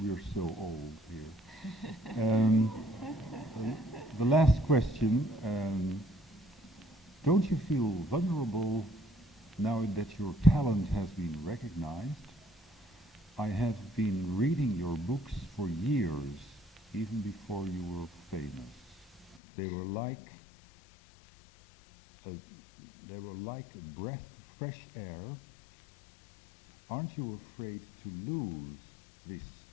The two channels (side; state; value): right; drops out; at 19.4 s